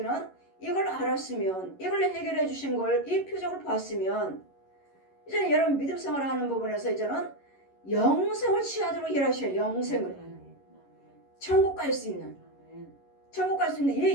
이걸 알았으면, 이걸 해결해 주신 걸, 이 표적을 봤으면, 이제는 여러분 믿음 생활을 하는 부분에서 이제는 영생을 취하도록 일하셔요. 영생을, 천국 갈 수 있는, 천국 갈 수 있는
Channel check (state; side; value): late; right; 11 ms